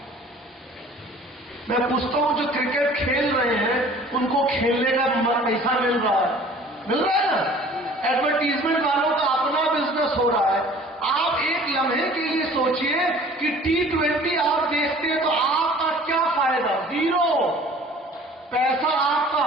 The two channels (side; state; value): both; normal; correlation 0.49